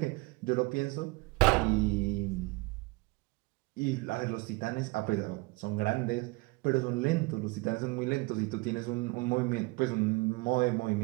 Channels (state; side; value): quieter; left; 25.4 dB